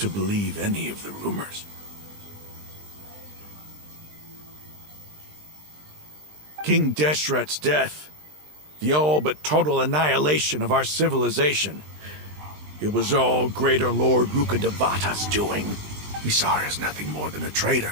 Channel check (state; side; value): late; left; 20 ms